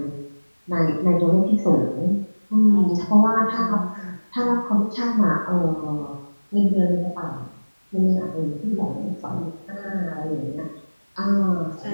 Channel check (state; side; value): inverted; both; correlation -1.00